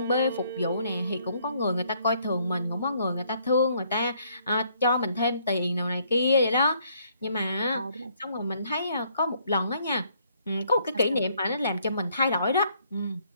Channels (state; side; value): inverted; both; correlation -0.67